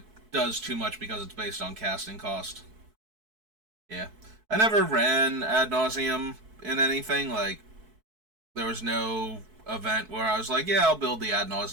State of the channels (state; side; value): late; left; 4.6 ms